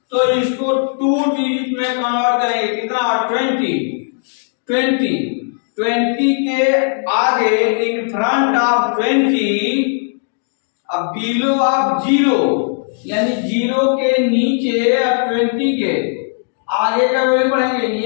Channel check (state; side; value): silent; right; 67 dB below the other